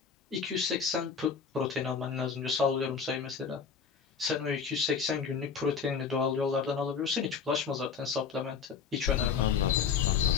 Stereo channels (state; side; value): quieter; right; 6.3 dB